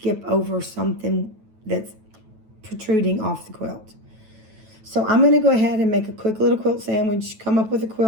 over something that's protruding off the quilt. So I'm going to go ahead and make a quick little quilt sandwich, come up with a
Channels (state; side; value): late; left; 9.2 ms